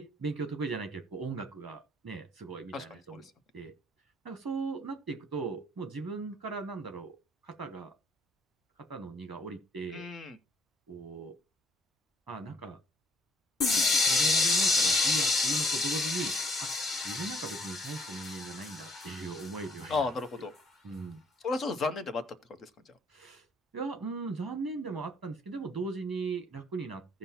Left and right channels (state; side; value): normal; both; correlation 0.62